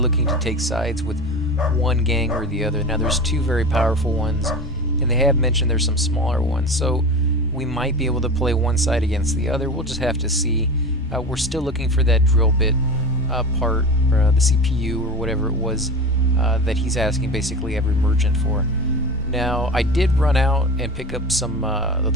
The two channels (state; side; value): normal; both; correlation 0.30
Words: to take sides with one gang or the other. Now, there's two very powerful ones, and they have mentioned there's some smaller ones, so we might be able to play one side against the other. We'll just have to see. We're still looking for that drill bit part, or the CPU, or whatever it was that he's asking basically every merchant for. Now, I did run out and pick up some of